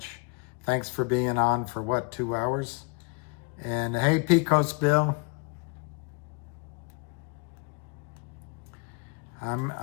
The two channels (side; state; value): right; quieter; 32.3 dB